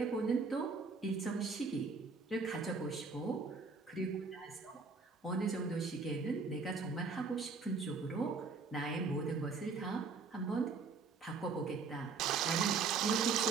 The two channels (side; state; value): left; quieter; 4.6 dB